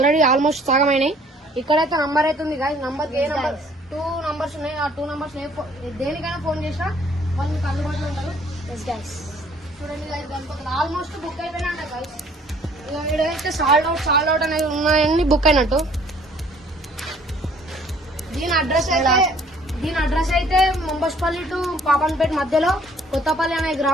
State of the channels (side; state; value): both; normal; correlation 0.58